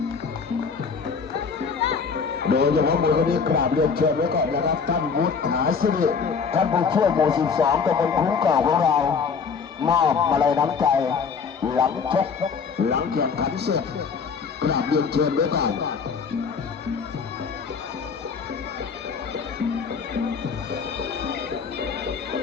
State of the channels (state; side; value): quieter; right; 5.7 dB